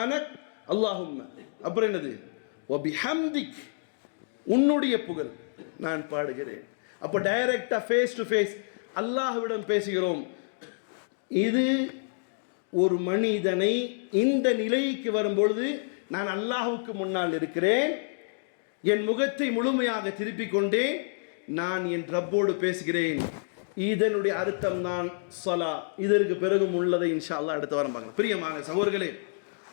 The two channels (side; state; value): right; silent; digital silence